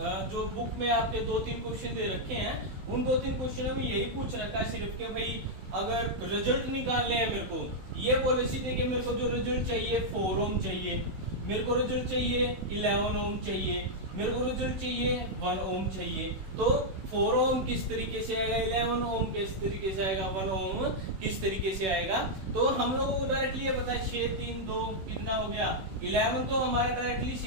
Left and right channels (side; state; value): left; late; 16 ms